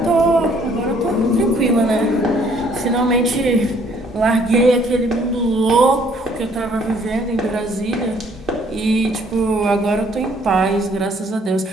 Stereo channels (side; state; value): both; normal; correlation 0.62